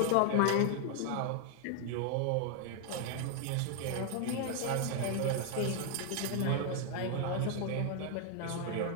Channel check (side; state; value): both; different; correlation 0.00